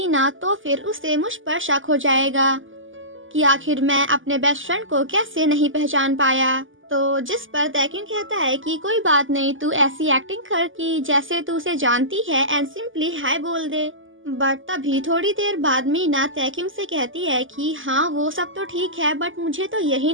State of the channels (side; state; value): left; late; 0.58 ms